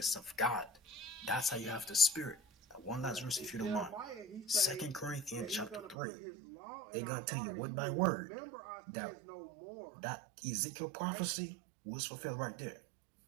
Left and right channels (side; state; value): left; drops out; at 6.0 s